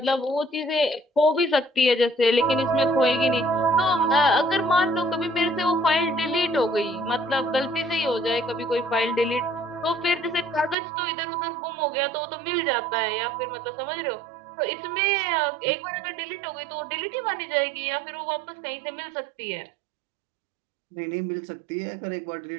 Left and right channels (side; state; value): left; drops out; at 10.8 s